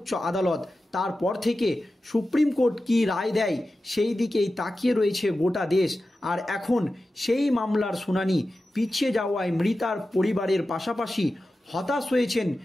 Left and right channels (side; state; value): both; normal; correlation 0.93